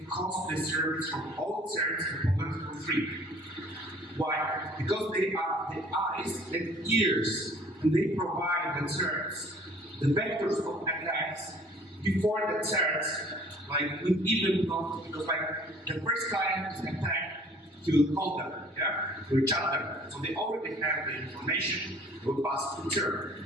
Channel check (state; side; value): normal; both; correlation 0.53